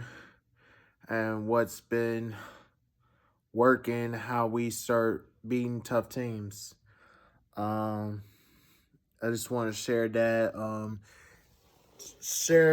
and what's been working, how we start beating tough teams. Um, I just want to share that.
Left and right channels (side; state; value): both; identical; correlation 1.00